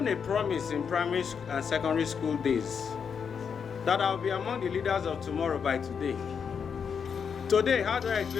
a promise in primary and secondary school days that I'll be among the leaders of tomorrow by today. Today, how do I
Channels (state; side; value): quieter; right; 6.7 dB